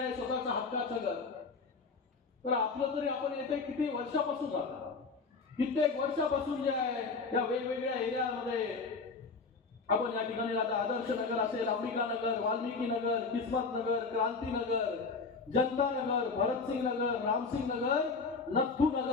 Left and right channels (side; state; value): right; quieter; 4.4 dB